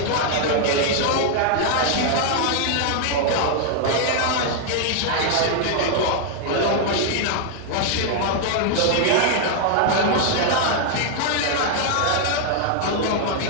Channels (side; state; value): both; different; correlation 0.00